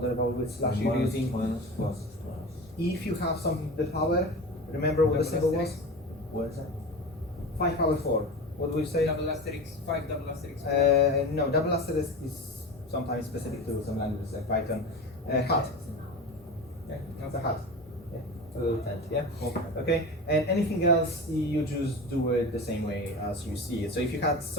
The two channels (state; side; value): normal; both; correlation 0.29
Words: about which slash you're Minus, using. minus, plus. If you have something to the power, remember what the symbol was? What is that? 5 power 4. What do we say? Double asterisk, 5 double asterisk. No, double asterisk is sometimes specific to some languages like Python. Hat. Yeah, that's a hat. Yeah, a little tent. Yeah. Okay. And anything else, you just do it the same way as you see it. So if you had